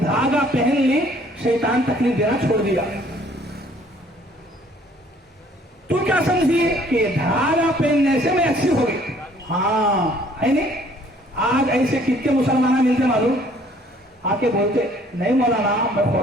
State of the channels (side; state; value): both; normal; correlation 0.59